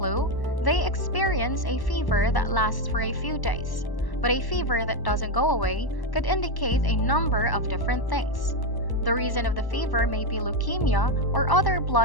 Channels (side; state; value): right; late; 1.1 ms